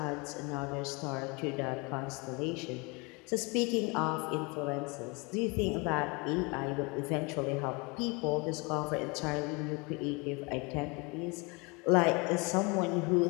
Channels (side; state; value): right; quieter; 28.9 dB